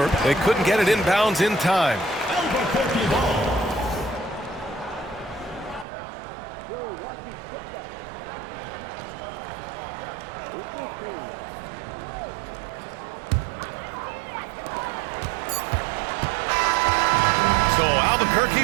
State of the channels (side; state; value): left; drops out; at 5.9 s